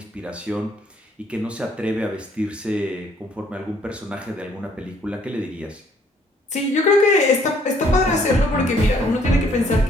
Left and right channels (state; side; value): normal; both; correlation 0.64